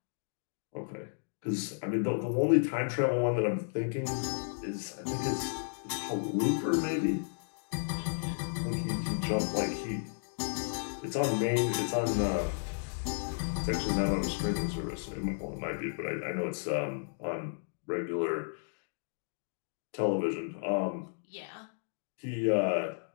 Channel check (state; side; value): silent; right; digital silence